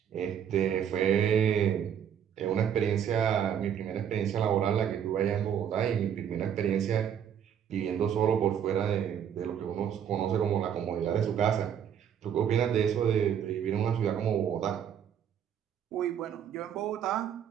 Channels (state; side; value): quieter; left; 8.8 dB